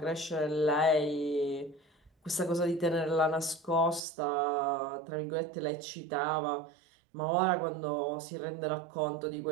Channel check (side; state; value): left; drops out; at 4.0 s